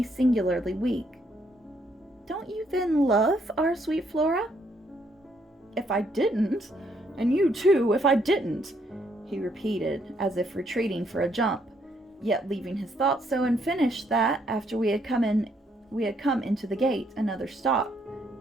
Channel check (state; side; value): normal; both; correlation 0.71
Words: singularly weak. "Don't you then love our sweet Flora?" "If I didn't, and you too, if I didn't," he repeated, as if retreating for a jump, yet leaving his thoughts so unfinished that, after we had come into the gate, another stop,